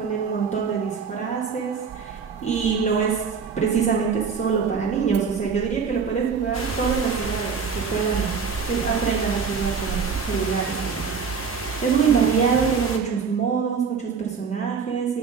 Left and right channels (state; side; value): quieter; left; 5.8 dB